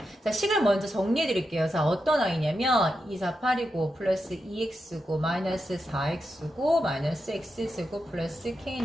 자, 식을 먼저 정리해 드릴게요. 자, 어떤 아이냐면 2, 4, 8이고 플러스 2x고 마이너스 4x고 마이너스 x제곱 플러스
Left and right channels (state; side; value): normal; both; correlation 0.87